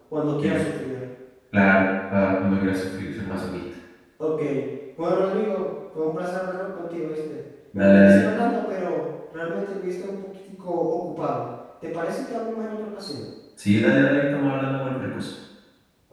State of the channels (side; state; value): both; identical; correlation 1.00